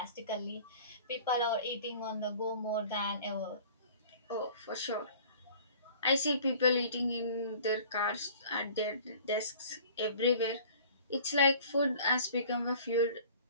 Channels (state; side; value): inverted; both; correlation -0.48